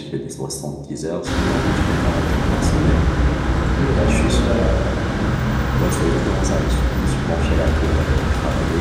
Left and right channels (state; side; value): identical; both; correlation 1.00